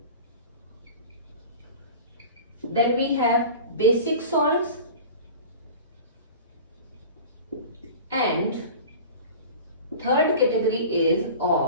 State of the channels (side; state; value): both; inverted; correlation -0.37